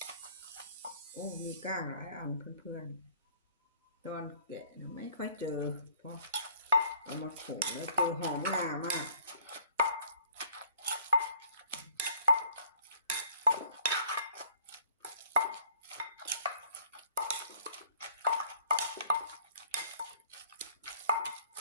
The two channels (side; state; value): both; inverted; correlation -0.57